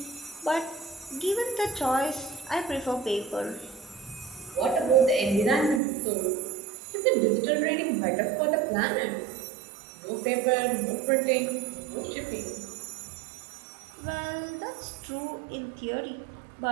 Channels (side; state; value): left; drops out; at 5.8 s